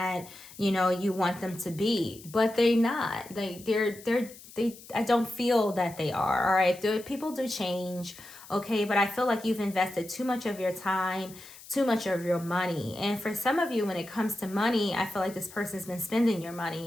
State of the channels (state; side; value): noise; left; hiss, 19 dB below the sound